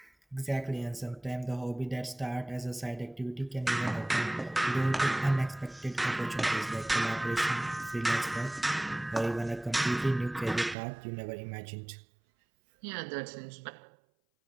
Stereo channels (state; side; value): drops out; left; at 10.8 s